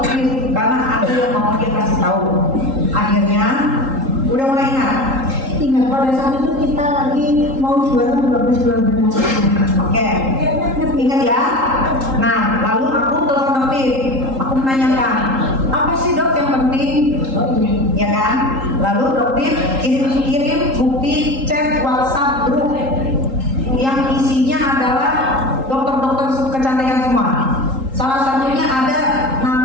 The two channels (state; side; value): late; left; 3.8 ms